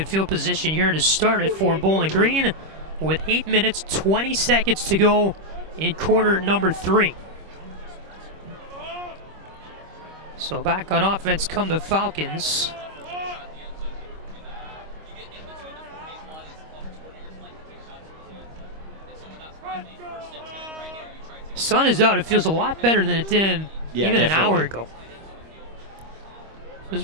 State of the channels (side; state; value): left; late; 25 ms